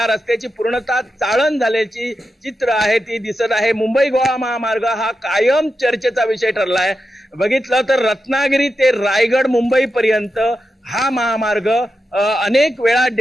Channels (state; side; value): normal; both; correlation 0.89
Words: रस्त्याची पूर्णतः चाळण झाल्याची चित्र आहे ती दिसत आहे। मुंबई गोवा महामार्ग हा कायम चर्चेचा विषय ठरला आहे। बघितलं तर रत्नागिरी ते रायगड मुंबई पर्यंत हा महामार्ग अनेक वेळा